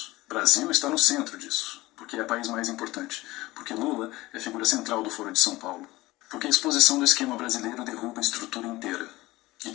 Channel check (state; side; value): quieter; right; 19.3 dB